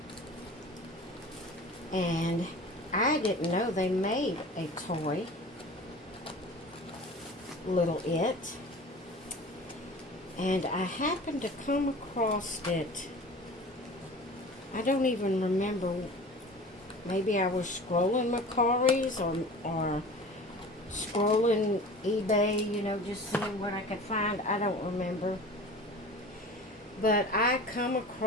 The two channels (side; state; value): both; normal; correlation 0.39